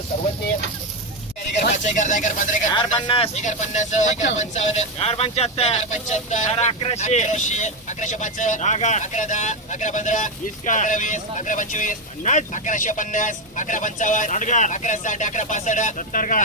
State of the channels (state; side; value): noise; left; hum, 29 dB below the sound